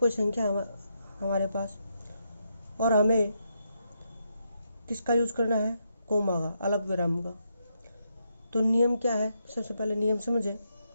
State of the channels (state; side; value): inverted; both; correlation -0.80